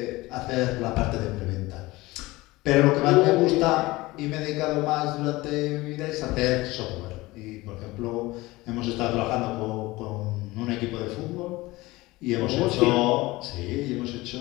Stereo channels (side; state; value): right; quieter; 20.3 dB